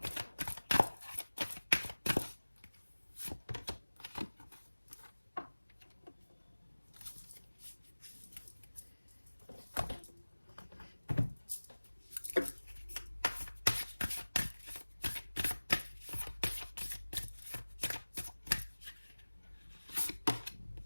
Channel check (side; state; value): both; inverted; correlation -1.00